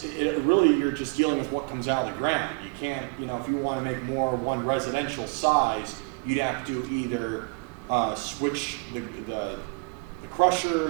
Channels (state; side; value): quieter; left; 30.1 dB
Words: you're just dealing with what comes out of the ground. You can't, if you want to make more one residential size, you'd have to either switch the